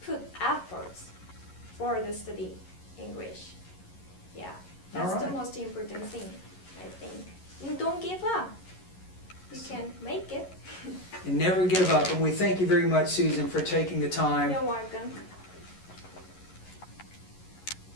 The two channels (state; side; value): late; right; 11 ms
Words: put efforts for the study English. Yeah, that's the most important thing, I think. And don't give up. You can make it. And never give up. And we thank you very much, Susan, for taking the time. You're welcome.